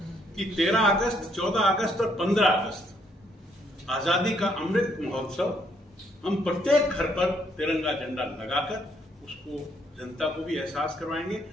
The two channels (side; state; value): both; normal; correlation 0.70